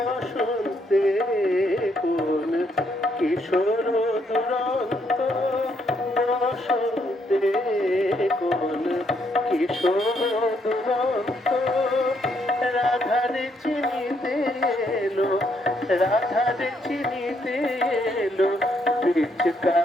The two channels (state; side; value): normal; both; correlation 0.74